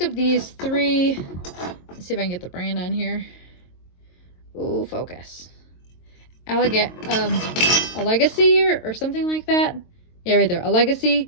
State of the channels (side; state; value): right; late; 22 ms